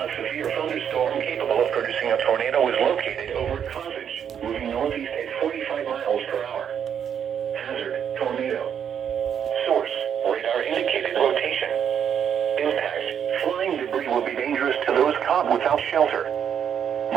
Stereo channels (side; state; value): left; quieter; 8.4 dB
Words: severe thunderstorm capable of producing a tornado is located over Carthage, moving northeast at 45 miles per hour. Hazard, tornado. Source, radar indicated rotation. Impact, flying debris will be dangerous to those caught without shelter.